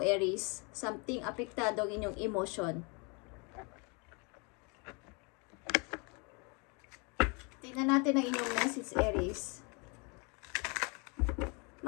Something apektado ang inyong emotion. Tingnan natin ang inyong message, Aries.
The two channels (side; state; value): right; quieter; 32.2 dB